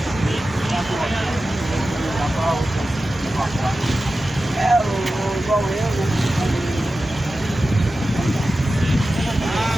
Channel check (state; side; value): normal; both; correlation 0.94